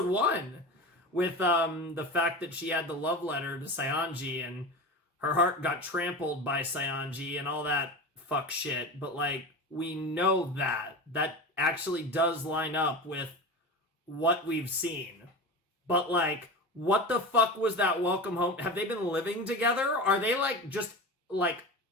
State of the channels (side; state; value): both; normal; correlation 0.28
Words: 1. With the fact that she had the love letter to Sayanji and her heart got trampled by Sayanji and all that fuck shit. But, like, we know that. That actually does line up with what we've seen. But, like, what the fuck was that welcome home? Have they been living together? Are they, like, just, like,